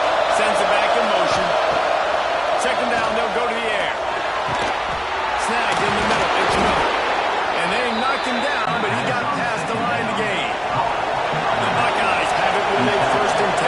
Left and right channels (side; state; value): both; identical; correlation 1.00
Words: Sends it back in motion. Second down, they'll go to the air. Snagged in the middle. It's Miller. And they knocked him down, but he got past the line to gain. The Buckeyes have it with a 1st and